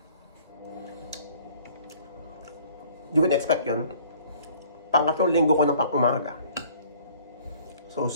Hindi ko in-expect yun. Pangatlong linggo ko ng pang umaga. So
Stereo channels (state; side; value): inverted; both; correlation -0.54